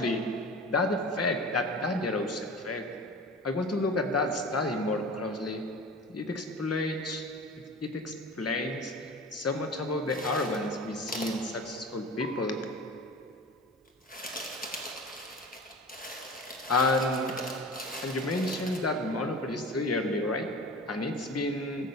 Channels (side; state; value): both; normal; correlation 0.36